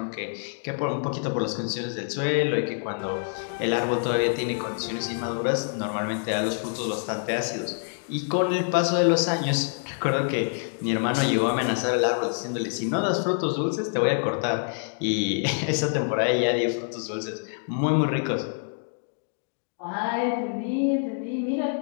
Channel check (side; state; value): right; silent; 61 dB below the other